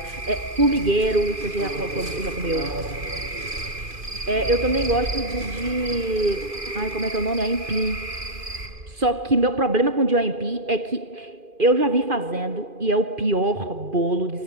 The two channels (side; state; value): left; late; 2.5 ms